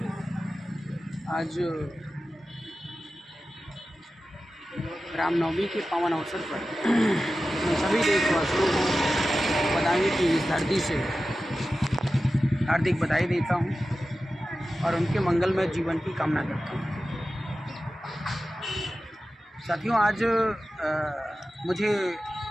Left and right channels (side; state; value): both; normal; correlation 0.94